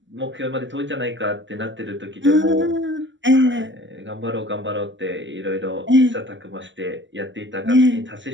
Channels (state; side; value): late; left; 0.54 ms